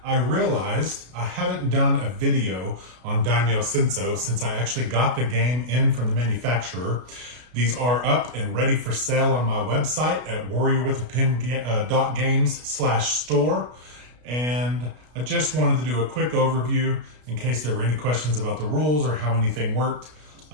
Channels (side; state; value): left; late; 33 ms